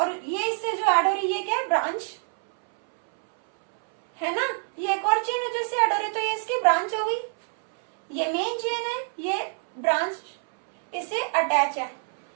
ये इससे जो ऐड हो रही है ये क्या है? ब्रांच है ना. ये एक और चेन है जो इससे ऐड हो रही है, तो ये इसकी ब्रांच हो गई. ये मेन चेन है, ये ब्रांच इससे अटैच है.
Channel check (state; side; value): silent; left; 61 dB below the other